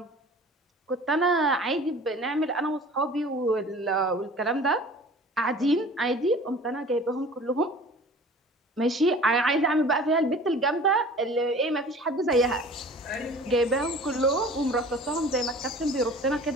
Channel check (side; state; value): both; normal; correlation 0.44